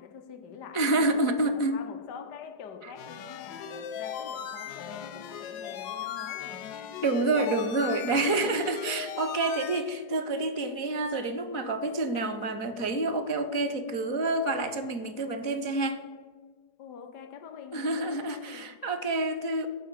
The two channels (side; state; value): right; late; 4.8 ms